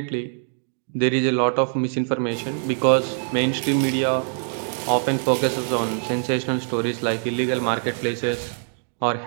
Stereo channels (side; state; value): left; silent; digital silence